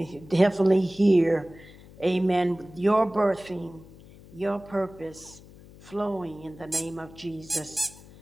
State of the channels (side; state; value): left; noise; hum, 21 dB below the sound